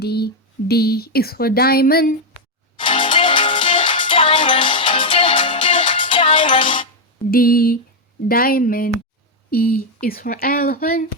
D is for diamond. D diamond. E is for elephant.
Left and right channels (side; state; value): both; normal; correlation 0.02